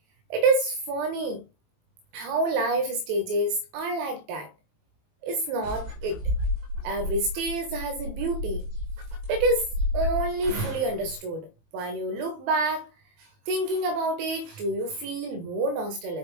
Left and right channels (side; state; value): left; late; 18 ms